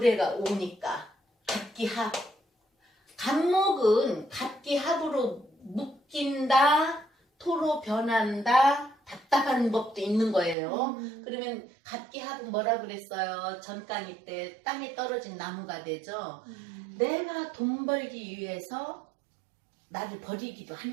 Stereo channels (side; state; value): left; drops out; at 10.6 s